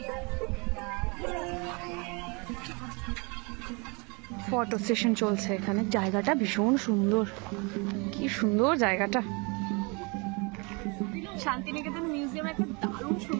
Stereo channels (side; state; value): left; quieter; 30.1 dB